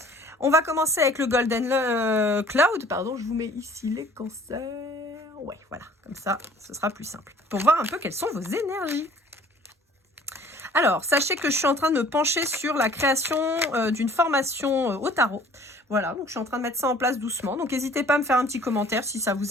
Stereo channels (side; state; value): both; normal; correlation 0.53